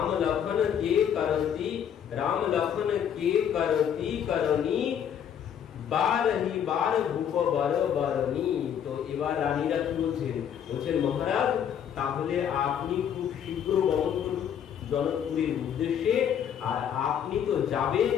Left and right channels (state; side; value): quieter; right; 8.9 dB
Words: लखन के करती, राम लखन के करती करनी बारही बार भूप बर बरनी। तो এবার রানীরা কি বলছেন, বলছেন মহারাজ তাহলে আপনি খুব শীঘ্র গমন করুন জনকপুরের উদ্দেশ্যে। আর আপনি তো যাবেন,